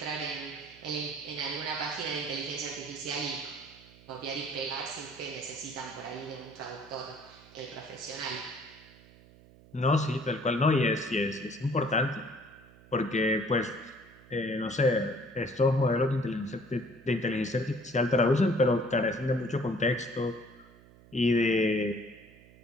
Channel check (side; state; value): right; noise; hum, 24 dB below the sound